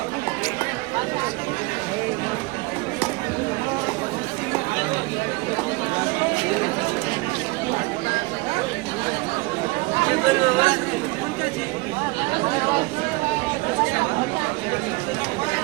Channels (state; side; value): quieter; left; 23.9 dB